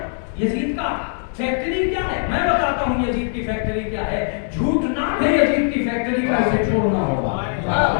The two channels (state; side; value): silent; right; 65 dB below the other